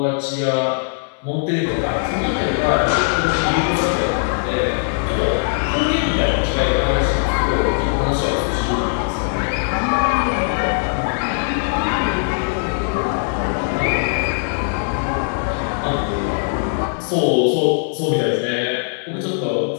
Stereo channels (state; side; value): silent; right; digital silence